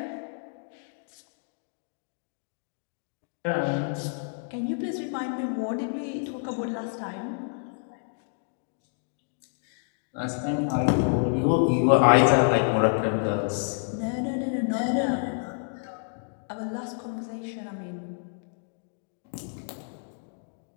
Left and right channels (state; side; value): silent; right; digital silence